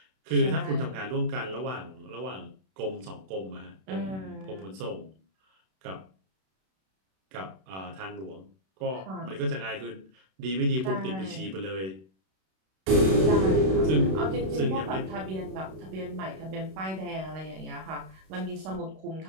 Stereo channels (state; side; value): late; left; 32 ms